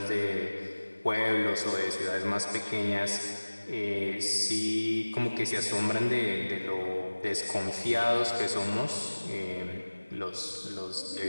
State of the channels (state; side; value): inverted; both; correlation -1.00